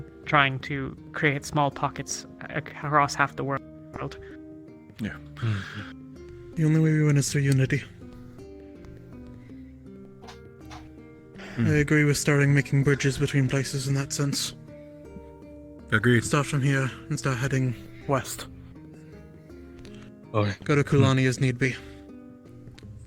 trying to create small pockets across half the world. Yeah. The only way we win is through unity. I agree with starting making bridges between places in that sense. Agreed. Start from here and start heading west. Okay. Go to Kulani as need be.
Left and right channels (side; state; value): both; identical; correlation 1.00